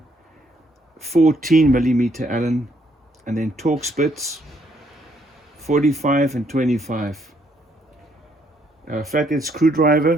14mm Allen, and then torque spits, 45 and 25. A flathead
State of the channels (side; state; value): both; normal; correlation 0.70